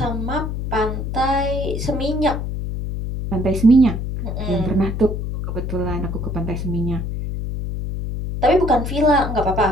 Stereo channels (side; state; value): left; noise; hum, 4 dB below the sound